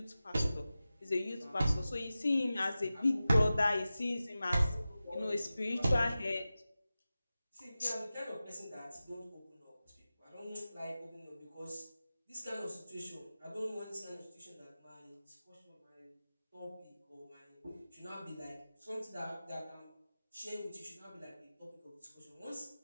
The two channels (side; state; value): both; inverted; correlation -0.95